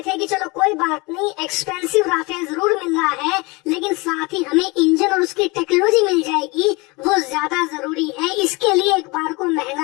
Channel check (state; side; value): quieter; right; 25.9 dB